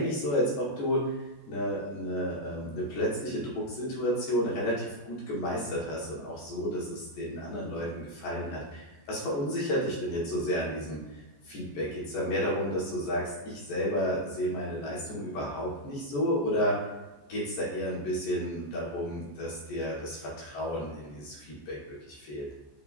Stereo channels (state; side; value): late; right; 14 ms